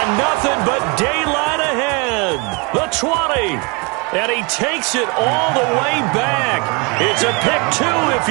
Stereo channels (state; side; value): quieter; left; 29.6 dB